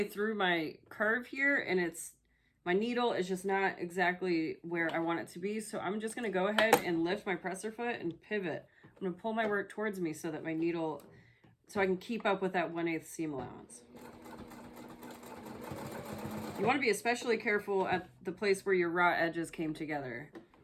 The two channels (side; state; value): both; identical; correlation 1.00